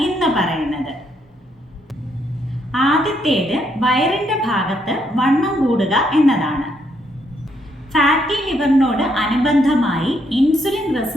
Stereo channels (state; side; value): normal; both; correlation 0.74